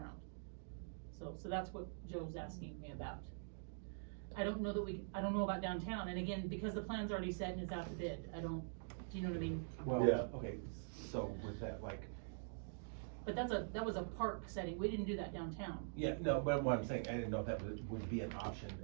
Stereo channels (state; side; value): silent; left; digital silence